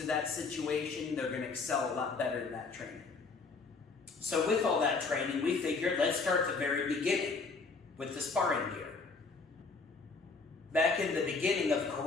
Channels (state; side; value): quieter; right; 4.3 dB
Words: to that situation, they're going to excel a lot better in that training. So with all that training, we figured let's start at the very beginning with the sparring gear. Back in the beginning of